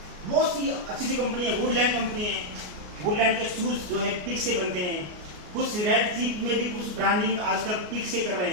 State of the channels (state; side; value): late; left; 33 ms